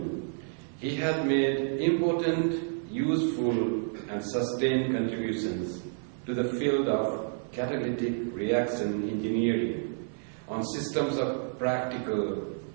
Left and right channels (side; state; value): left; silent; digital silence